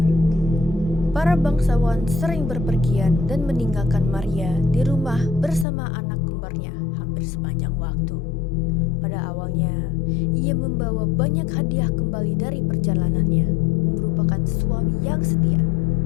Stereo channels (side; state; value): right; drops out; at 5.7 s